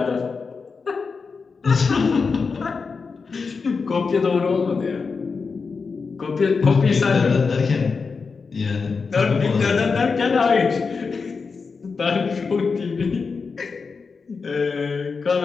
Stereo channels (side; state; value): right; quieter; 4.9 dB